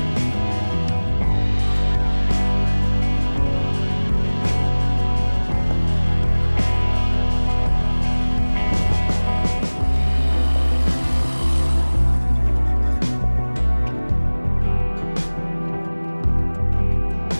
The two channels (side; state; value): both; inverted; correlation -1.00